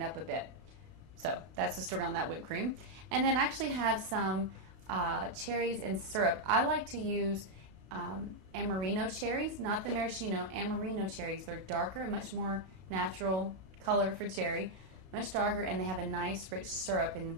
up a bit. So that's the story on that whipped cream. And then I actually have some cherries and syrup. I like to use Amarino cherries, not the maraschino, Amarino cherries. They're darker, much more natural color for cherry, much darker, and they have a nice rich syrup, and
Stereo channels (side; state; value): left; late; 32 ms